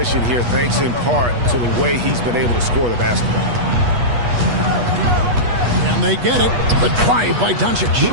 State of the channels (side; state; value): left; late; 8.3 ms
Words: here, thanks in part to the way he's been able to score the basketball. And they get it. The drive by Doncic.